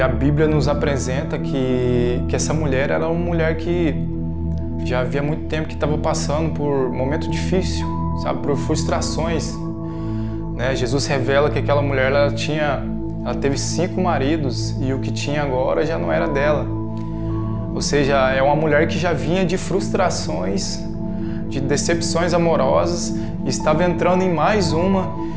a Bíblia nos apresenta que essa mulher era uma mulher que já havia muito tempo que estava passando por um momento difícil, sabe, por frustrações. Jesus revela que aquela mulher ela teve 5 maridos e o que tinha agora já não era dela. Ou seja, é uma mulher que já vinha de frustrações, de decepções amorosas, e estava entrando em mais uma.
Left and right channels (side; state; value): both; identical; correlation 1.00